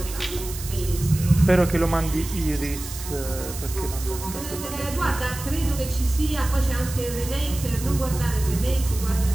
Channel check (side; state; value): right; noise; hiss, 11 dB below the sound